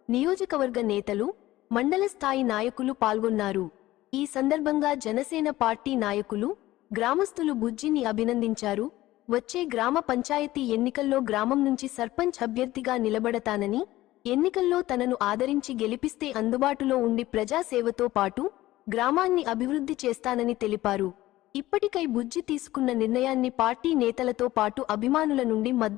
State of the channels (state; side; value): quieter; right; 16.4 dB